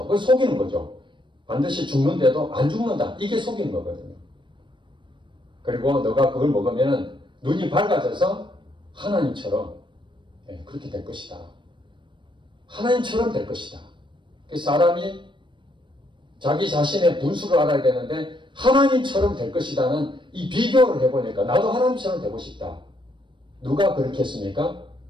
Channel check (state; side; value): late; left; 0.23 ms